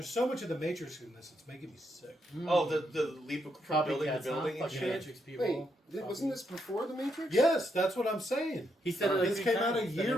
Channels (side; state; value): both; normal; correlation 0.79